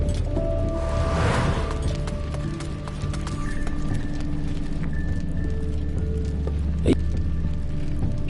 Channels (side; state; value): both; identical; correlation 1.00